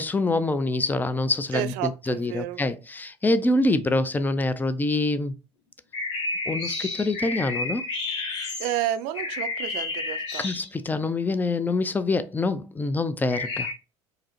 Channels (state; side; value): normal; both; correlation 0.54